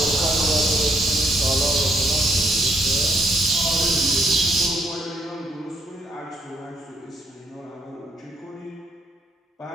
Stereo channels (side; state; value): both; normal; correlation 0.71